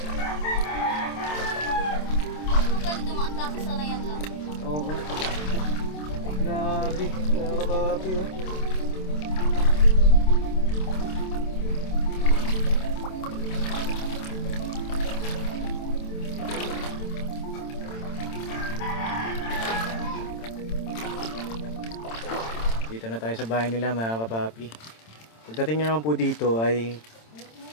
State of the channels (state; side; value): late; right; 26 ms